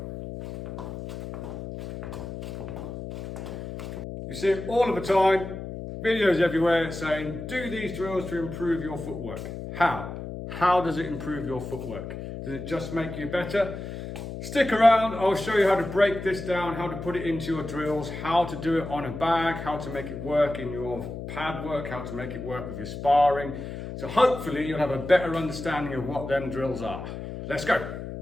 You see it all of the time, videos everywhere saying, do these drills to improve your footwork. How? How does it improve your footwork? Does it just make you better? Stick around, I'll show you how to break this down, how to put it into your drills, how to do it on a bag, how to make it work in your pad work, how to make it work with your sparring. So hopefully you'll have a better understanding of what them drills are. Let's go.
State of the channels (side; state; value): left; noise; hum, 8 dB below the sound